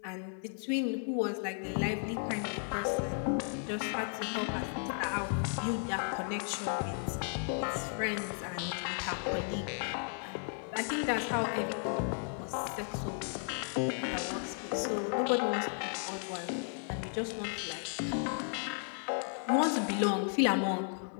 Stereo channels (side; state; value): right; silent; 55 dB below the other